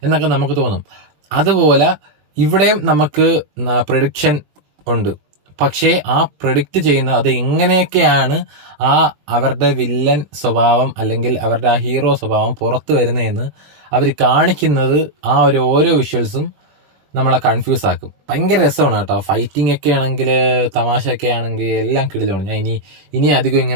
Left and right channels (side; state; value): left; late; 20 ms